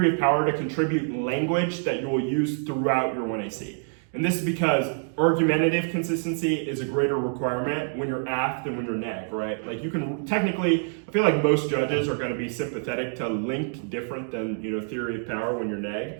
of power to contribute language that you will use throughout your 1AC. And this is because argumentative consistency is a greater requirement when you're AF than when you're neg, right? Like you can technically, I feel like most judges are going to be sympathetic to link different than, theory of power when you're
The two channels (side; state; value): left; silent; 61 dB below the other